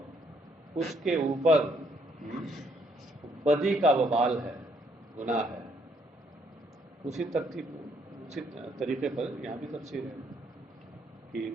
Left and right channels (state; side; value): normal; both; correlation 0.69